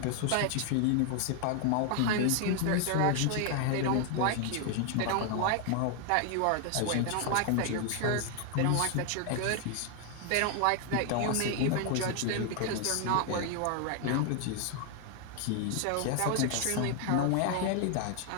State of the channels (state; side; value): different; both; correlation 0.00